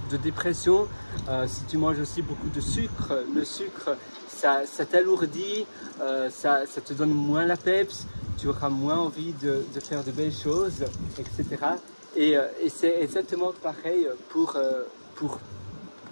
dépression. Si tu manges aussi beaucoup de sucre, le sucre, ça t'alourdit, ça te donne moins la peps, tu auras moins envie de faire de belles choses, etc. Et c'est exactement pareil pour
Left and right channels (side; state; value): both; inverted; correlation -1.00